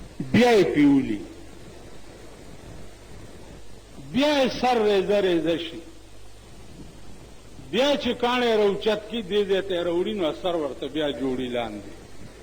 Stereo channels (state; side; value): identical; both; correlation 1.00